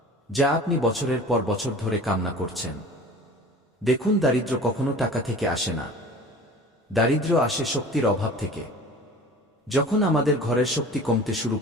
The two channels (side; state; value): both; normal; correlation 0.41